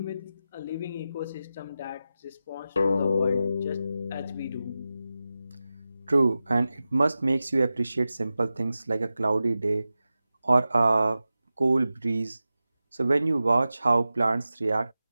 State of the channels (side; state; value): both; inverted; correlation -0.93